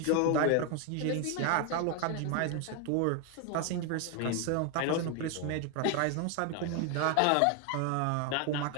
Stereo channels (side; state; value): both; different; correlation 0.01